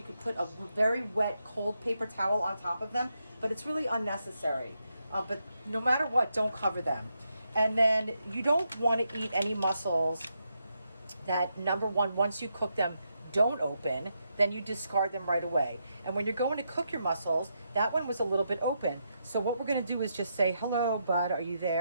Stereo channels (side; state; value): both; inverted; correlation -0.82